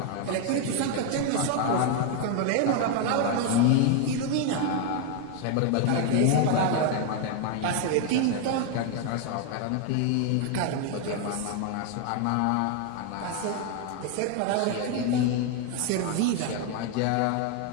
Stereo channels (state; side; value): different; both; correlation 0.01